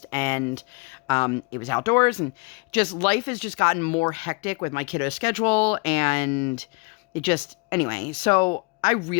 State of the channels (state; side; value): quieter; right; 30.3 dB